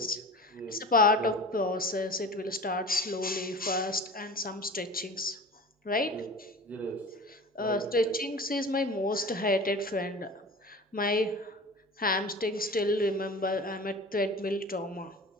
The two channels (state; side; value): normal; both; correlation 0.36